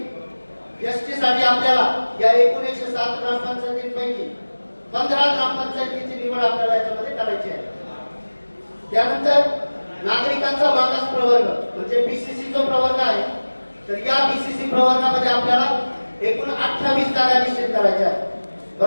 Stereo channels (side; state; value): both; inverted; correlation -1.00